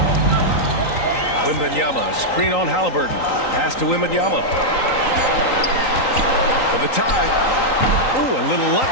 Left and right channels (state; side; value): late; right; 3.9 ms